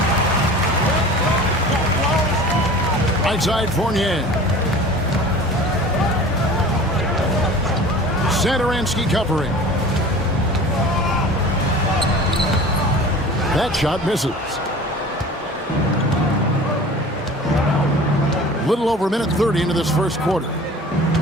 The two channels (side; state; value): both; normal; correlation 0.41